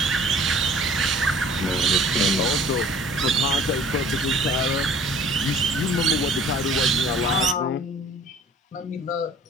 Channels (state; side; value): normal; both; correlation 0.51